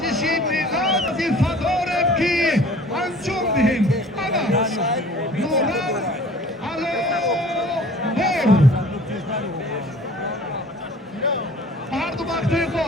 ملت وظیفه داریم که انجام دهیم. اما نورم علامت هر دو وقتای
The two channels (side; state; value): both; normal; correlation 0.48